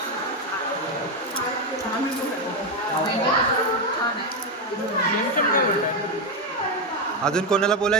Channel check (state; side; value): normal; both; correlation 0.08